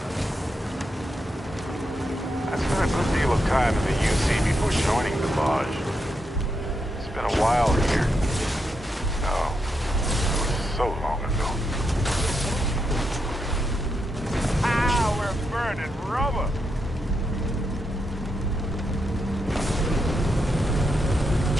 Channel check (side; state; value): both; normal; correlation 0.83